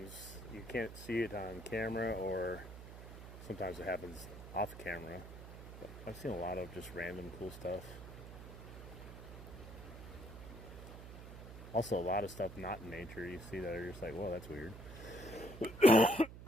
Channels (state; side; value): noise; right; hum, 13 dB below the sound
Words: you can't see it on camera, or sometimes it happens off camera. But I've seen a lot of just random cool stuff. Also, a lot of stuff not in nature you see that are just like, whoa, that's weird.